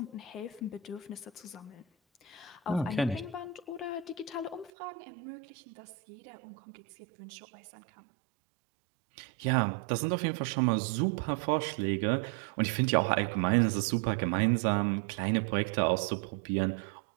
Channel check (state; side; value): drops out; left; at 4.7 s